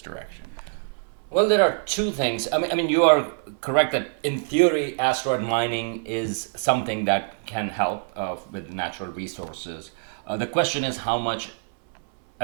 direction? Well, there are two things. I mean, you are correct that in theory, asteroid mining is something that can help with natural resources. The question is how much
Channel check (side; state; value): left; silent; 62 dB below the other